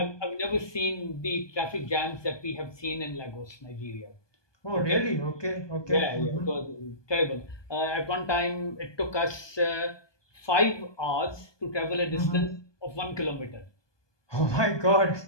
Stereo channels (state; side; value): late; right; 1.2 ms